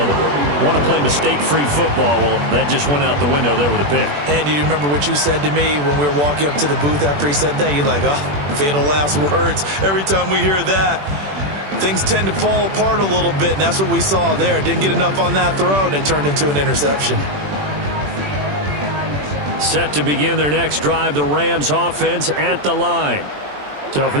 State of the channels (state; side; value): late; left; 21 ms